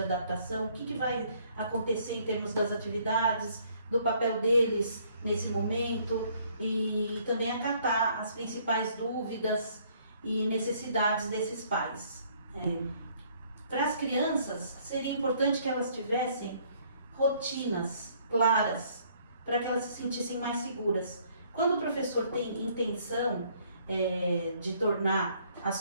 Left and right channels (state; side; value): inverted; both; correlation -0.63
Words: adaptação, o que vai acontecer em termos das atividades, do papel deles nesse momento, e também acatar as principais dúvidas e necessidades desses pais. Para as crianças, seria importante que elas tivessem rotinas claras, para que elas se sentissem mais seguras. Quando o professor tem intenção de tornar